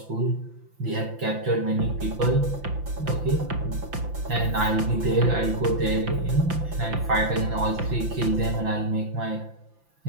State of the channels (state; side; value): late; left; 5.9 ms